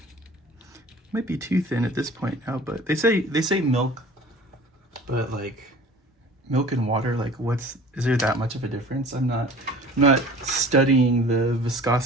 Might be too thin at this point now, but they say milk, but like milk and water, like is there that much of a difference? I'm not studying the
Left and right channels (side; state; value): both; normal; correlation 0.44